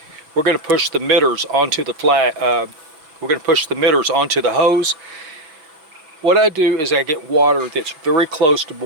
We're going to push the emitters onto the we're going to push the emitters onto the hose. What I do is I get water that's very close to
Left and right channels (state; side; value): late; left; 6.2 ms